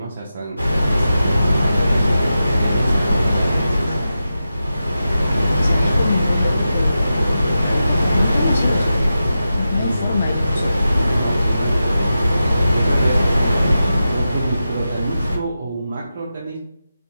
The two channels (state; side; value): inverted; both; correlation -0.91